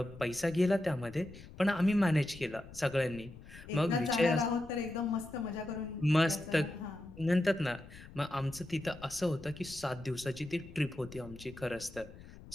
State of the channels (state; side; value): noise; left; rumble, 17 dB below the sound